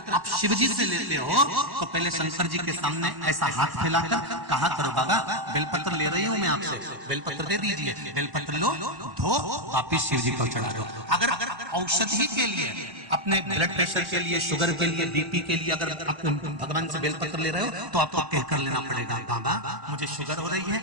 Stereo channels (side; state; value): left; late; 1.1 ms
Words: आप शिवजी से लेते हो, तो पहले शंकर जी के सामने ऐसा हाथ फैलाकर कहा करो, बाबा बेलपत्र ले रही हूं मैं आपसे, बेलपत्र दे दीजिए, बेलपत्र लो, धो, वापिस शिव जी को चढ़ा दो। अगर औषधि के लिए, अपने ब्लड प्रेशर के लिए, शुगर के लिए, बीपी के लिए अगर आप भगवान से बेलपत्र ले रहे हो, तो आपको कहकर लेना पड़ेगा, बाबा मुझे शुगर हो रही